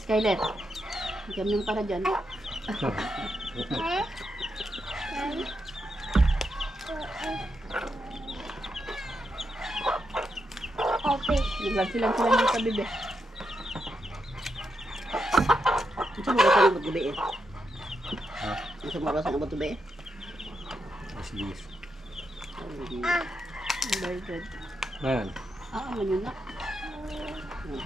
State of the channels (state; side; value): normal; both; correlation 0.83